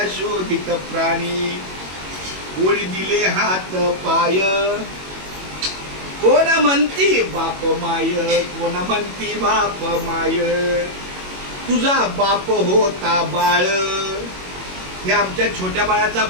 शोधित प्राणी. कोणी दिले हात पाय, कोणा म्हणती बाप माय, कोणा म्हणती बाप माय. तुझा बाप होता बाळ, हे आमच्या छोट्या बाळाचा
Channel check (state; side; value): late; left; 21 ms